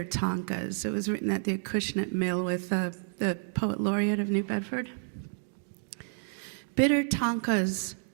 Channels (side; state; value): left; silent; digital silence